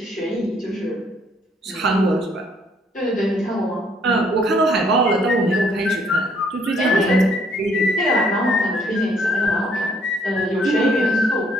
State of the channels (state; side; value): normal; both; correlation 0.66